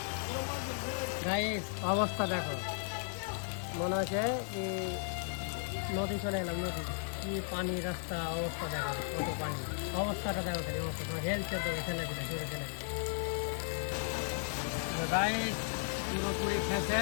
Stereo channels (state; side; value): silent; right; digital silence